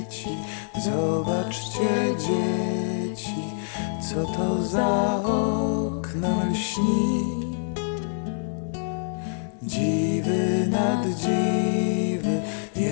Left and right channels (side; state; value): right; silent; digital silence